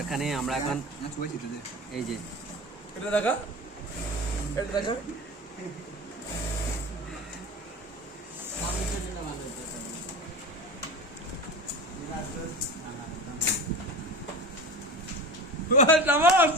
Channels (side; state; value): both; normal; correlation 0.31